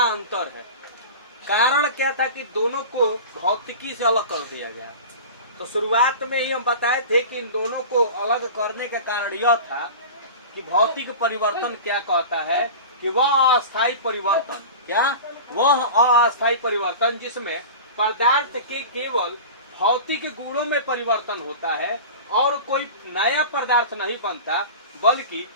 अंतर है। कारण क्या था कि दोनों को भौतिकी से अलग कर दिया गया। तो शुरुआत में ही हम बताए थे कि इन दोनों को अलग करने का कारण यह था कि भौतिक परिवर्तन क्या कहता है कि वह अस्थायी परिवर्तन, क्या वह अस्थायी परिवर्तन जिसमें पदार्थ के केवल भौतिक गुणों में परिवर्तन होता है और कोई नया पदार्थ नहीं बनता, बल्कि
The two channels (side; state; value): both; inverted; correlation -0.33